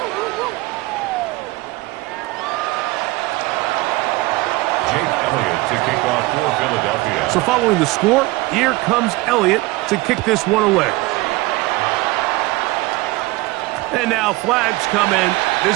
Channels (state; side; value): quieter; left; 21.2 dB